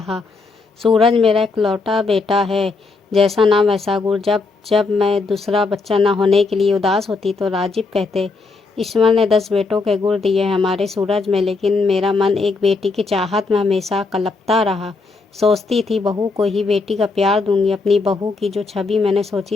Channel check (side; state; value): right; quieter; 4.0 dB